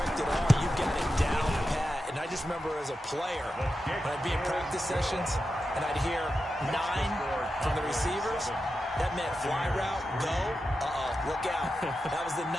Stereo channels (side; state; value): both; normal; correlation 0.90